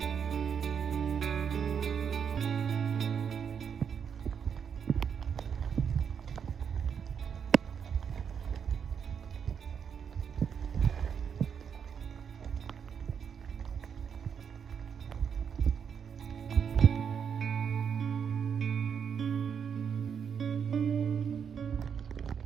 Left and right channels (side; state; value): left; quieter; 7.2 dB